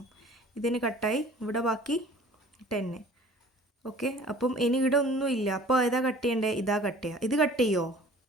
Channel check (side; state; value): both; normal; correlation 0.49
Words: ഇതിന് കട്ടായി, ഇവിടെ ബാക്കി 10. ഓക്കെ, അപ്പം ഇനി ഇവിടെ ഒന്നുമില്ല. അപ്പോൾ ഏതാ കട്ട് ചെയ്യേണ്ടത്, ഇതാ കട്ട് ചെയ്യുക. ഇത് കട്ട് ചെയ്യുമോ,